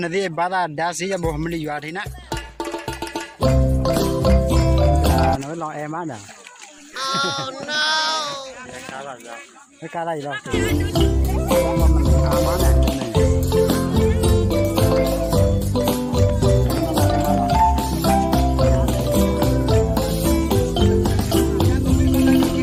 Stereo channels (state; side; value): identical; both; correlation 1.00